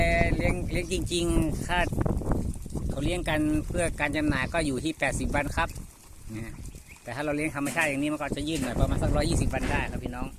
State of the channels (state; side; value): identical; both; correlation 1.00